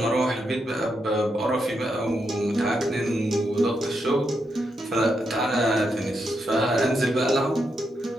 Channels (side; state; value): both; normal; correlation 0.82